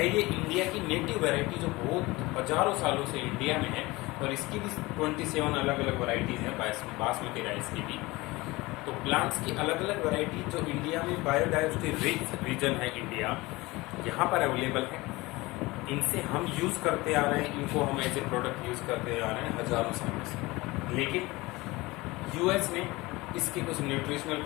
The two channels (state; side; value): quieter; right; 21.5 dB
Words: ये इंडिया की नेटिव वैरायटी जो बहुत हजारों सालों से इंडिया में है, और इसकी भी 27 अलग अलग वैरायटीज हैं बासमती राइस की भी। तो प्लांट्स की अलग अलग वैरायटी जो इंडिया में बायोडाइवर्सिटी रिच रीजन है इंडिया, यहाँ पर अवेलेबल है, इनसे हम यूज़ करते आ रहे हैं, इनको हम एज ए प्रोडक्ट यूज़ करते आ रहे हैं हजारों सालों से। लेकिन यूएस ने इसकी कुछ न्यूट्रिशनल